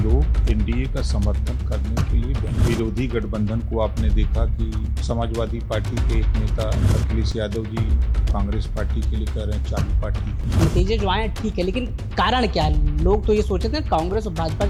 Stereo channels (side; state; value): both; identical; correlation 1.00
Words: एनडीए का समर्थन करने के लिए विरोधी गठबंधन को आपने देखा कि समाजवादी पार्टी के एक नेता अखिलेश यादव जी कांग्रेस पार्टी के लिए कह रहे हैं चालू पार्टी। नतीजे जो आए ठीक है, लेकिन कारण क्या है? लोग तो ये सोचे थे कांग्रेस और भाजपा